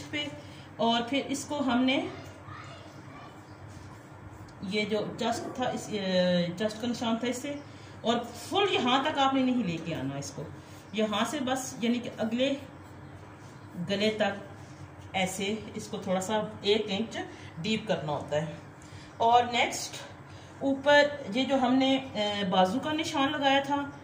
पे। और फिर इसको हमने ये जो जस्ट था, इस जस्ट का निशान था इससे, और फुल यहाँ तक आपने नहीं लेके आना इसको, यहाँ से बस यानी कि अगले गले तक ऐसे इसको थोड़ा सा 1 इंच डीप करना होता है। और नेक्स्ट ऊपर ये जो हमने बाजू का निशान लगाया था,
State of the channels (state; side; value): identical; both; correlation 1.00